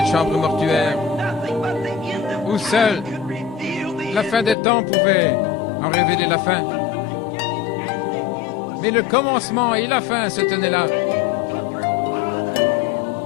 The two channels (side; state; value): right; drops out; at 4.5 s